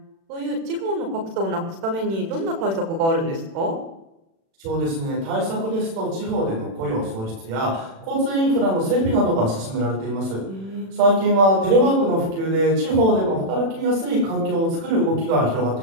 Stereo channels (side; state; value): left; late; 36 ms